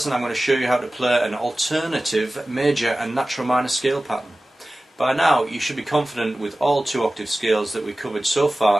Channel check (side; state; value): both; normal; correlation 0.96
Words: I'm going to show you how to play an alternative major and natural minor scale pattern. By now you should be confident with all 2-octave scales that we covered so